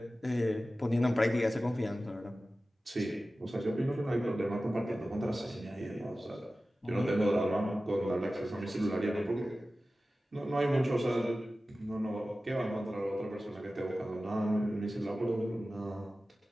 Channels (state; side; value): normal; both; correlation 0.95